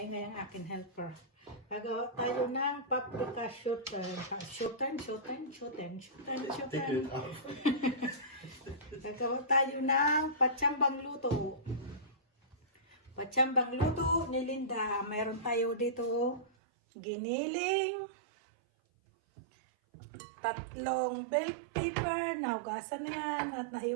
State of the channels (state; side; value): drops out; left; at 16.4 s